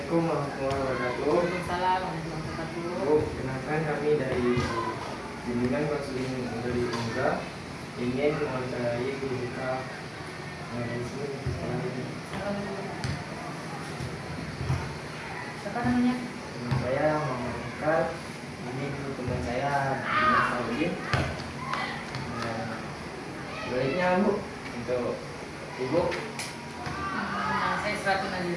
Assalamualaikum warahmatullahi wabarakatuh. Waalaikumsalam warahmatullahi wabarakatuh. Bu, kenalkan kami dari Bimbingan Konseling dari Umga ingin mewawancarai guru kita di sini di sekolah ini. Siapa namanya? Nama saya Muhammad Ikal. Ini guru teman saya Dimas Saudin. Baiknya Bu, untuk Ibu. Nama saya Sratu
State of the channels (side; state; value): both; identical; correlation 1.00